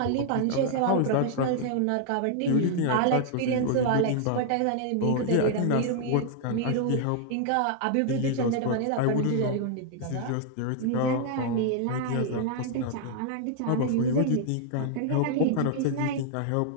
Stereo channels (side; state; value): both; different; correlation 0.00